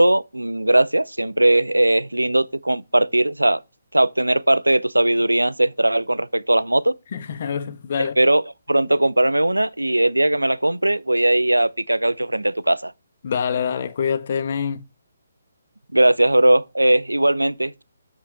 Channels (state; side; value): inverted; both; correlation -0.98